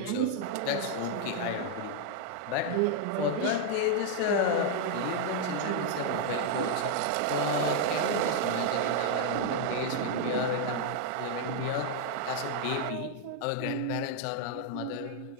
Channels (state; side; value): different; both; correlation 0.00